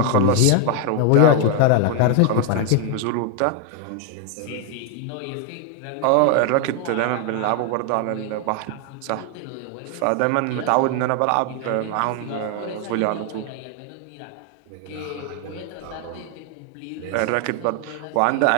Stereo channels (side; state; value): both; different; correlation 0.01